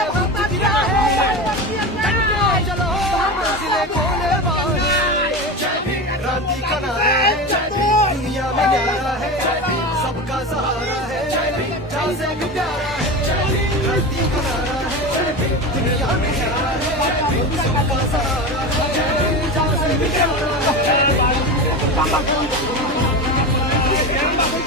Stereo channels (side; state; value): both; normal; correlation 0.24